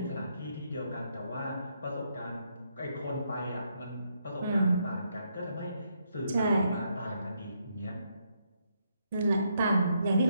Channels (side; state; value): both; inverted; correlation -0.76